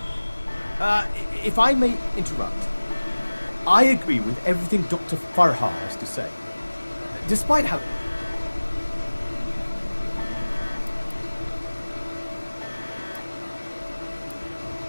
If I may interrupt, I agree with everything Dr. Farha has to say. Despite how...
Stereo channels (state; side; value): inverted; both; correlation -1.00